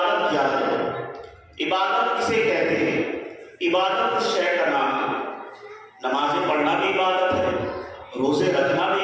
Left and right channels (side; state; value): both; identical; correlation 1.00